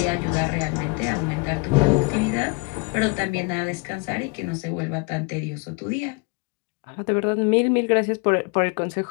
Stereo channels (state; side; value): quieter; right; 29.9 dB